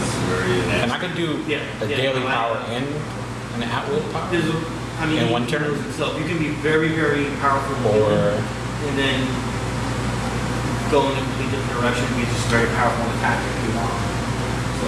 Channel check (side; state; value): both; identical; correlation 1.00